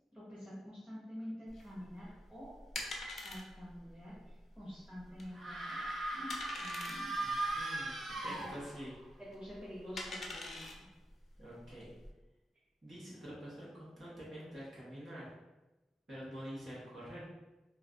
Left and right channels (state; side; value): normal; both; correlation 0.84